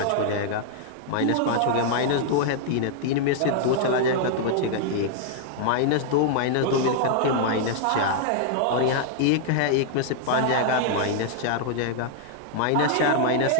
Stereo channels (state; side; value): different; both; correlation -0.01